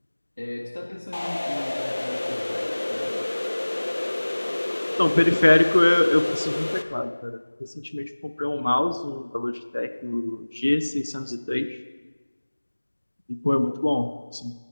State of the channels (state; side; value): inverted; both; correlation -1.00